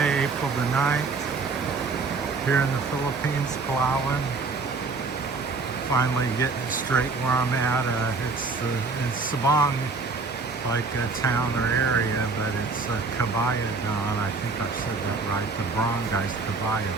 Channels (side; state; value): left; quieter; 4.3 dB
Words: April the 9th, here in the Philippines, Palawan. Finally getting it straight where I'm at. It's in Sabang, like a town or area, but it's Kabayagan. I think I said that right. The Barangay's